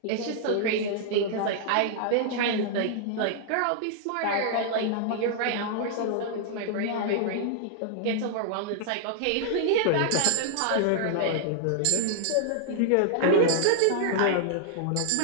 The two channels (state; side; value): different; both; correlation -0.01